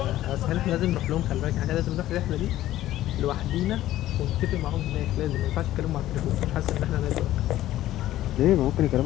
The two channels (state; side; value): quieter; right; 14.2 dB